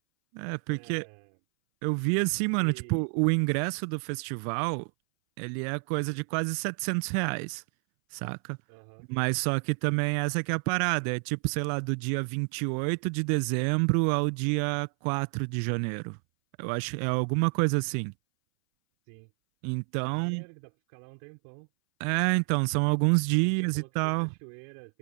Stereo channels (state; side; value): silent; left; 59 dB below the other